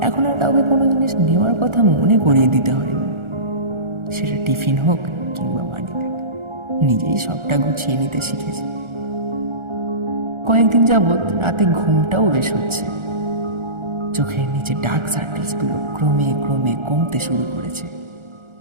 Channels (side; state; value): left; late; 1.4 ms